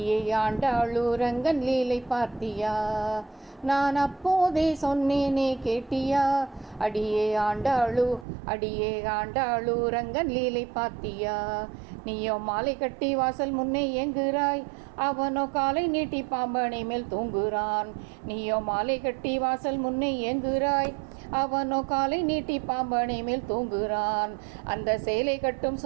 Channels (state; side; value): drops out; left; at 8.2 s